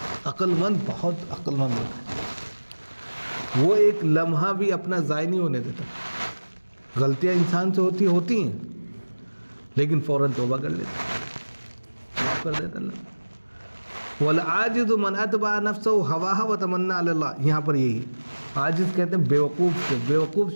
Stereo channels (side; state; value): both; inverted; correlation -1.00